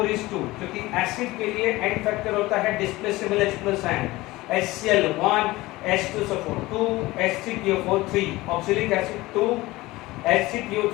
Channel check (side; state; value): right; quieter; 19.5 dB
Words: is 2, क्योंकि एसिड के लिए एंड फैक्टर होता है displaceable H+ ion, HCl 1, H2SO4 2, H3PO4 3, oxalic acid 2,